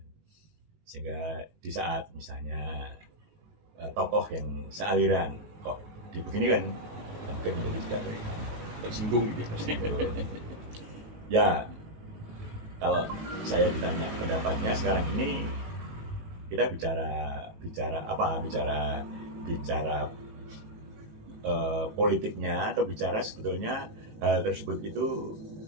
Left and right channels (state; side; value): late; left; 19 ms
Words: Sehingga di saat misalnya tokoh yang sealiran kok dibegini kan mungkin menjadi tidak Tersinggung gitu ya. Kalau saya ditanya pendapatnya sekarang ini, kita bicara politiknya, atau bicara sebetulnya hal tersebut itu